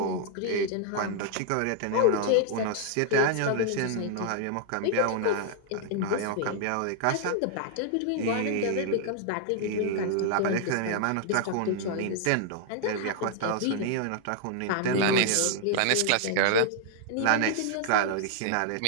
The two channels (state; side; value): different; both; correlation 0.00